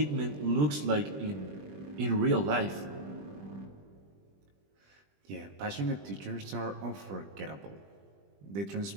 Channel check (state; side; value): late; left; 20 ms